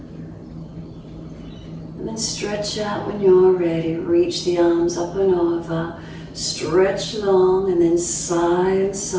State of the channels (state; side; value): identical; both; correlation 1.00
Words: And then stretch out when you're ready. Reach the arms up and over. Stretch long and then sigh and